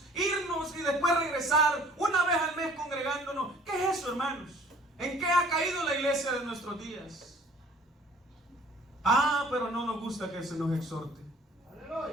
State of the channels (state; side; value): normal; both; correlation 0.53